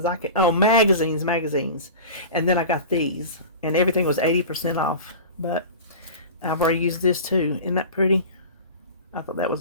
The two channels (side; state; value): both; inverted; correlation -0.34